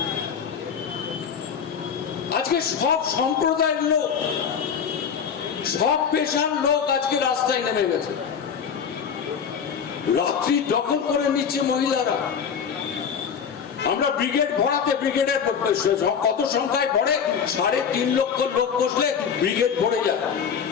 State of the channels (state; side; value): quieter; right; 7.1 dB